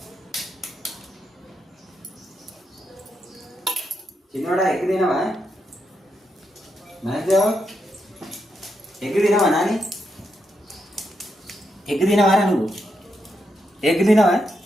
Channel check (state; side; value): normal; both; correlation 0.83